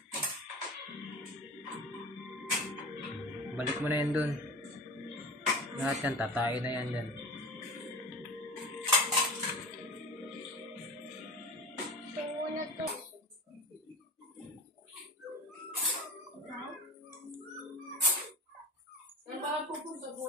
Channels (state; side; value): normal; both; correlation 0.31